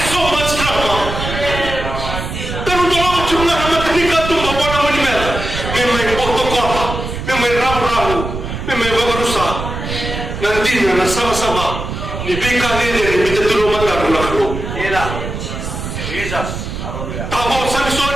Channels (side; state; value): right; noise; rumble, 6 dB below the sound